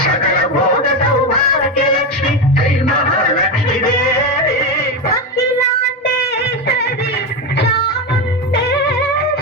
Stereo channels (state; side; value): normal; both; correlation 0.14